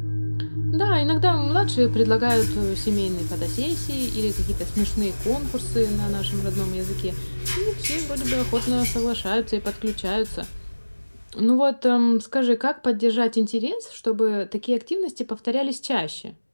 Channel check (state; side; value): inverted; both; correlation -1.00